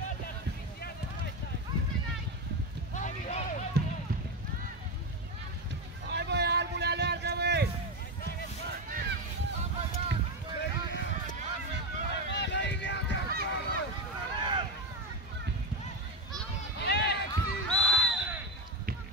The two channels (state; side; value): normal; both; correlation 0.14